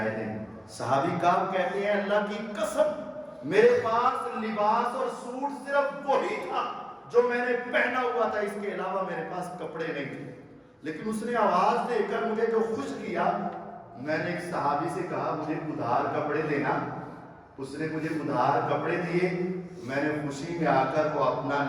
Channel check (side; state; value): both; identical; correlation 1.00